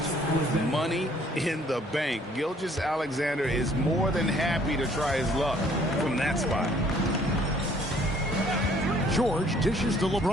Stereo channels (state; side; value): normal; both; correlation 0.60